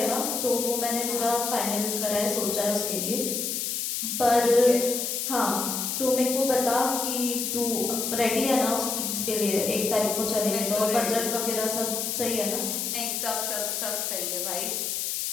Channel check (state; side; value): noise; left; hiss, 1 dB below the sound